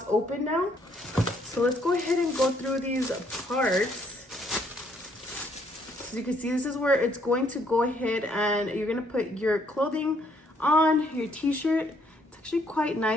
open now, so let's go ahead and go through these parts. As you can see, this is where it's going to go ahead and you're gonna put your clothing on, your t-shirt. It's actually quite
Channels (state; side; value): normal; both; correlation 0.68